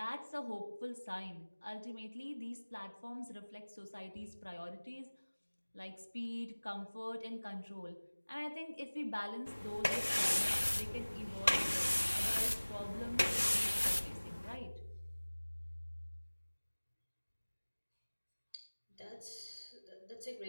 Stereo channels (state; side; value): inverted; both; correlation -1.00